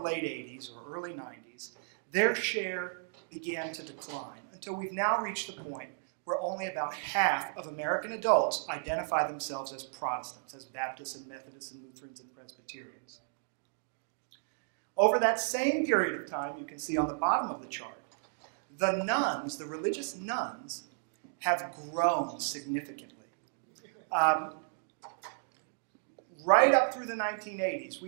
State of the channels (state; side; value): silent; left; digital silence